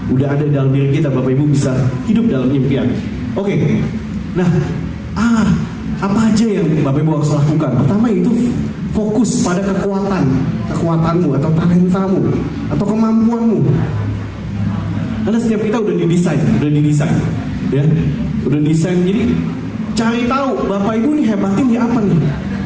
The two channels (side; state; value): both; identical; correlation 1.00